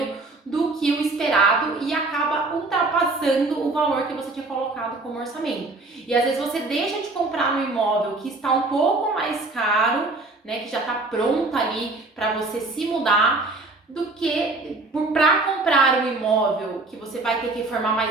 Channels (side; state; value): left; quieter; 3.2 dB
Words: do que o esperado e acaba ultrapassando o valor que você tinha colocado como orçamento. E às vezes você deixa de comprar um imóvel que está um pouco mais caro, né, que já está pronta ali para você se mudar, do que para comprar um imóvel que você vai ter que reformar,